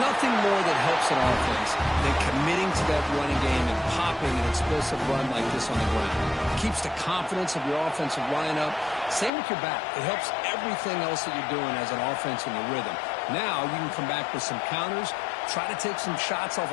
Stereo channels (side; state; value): right; drops out; at 9.3 s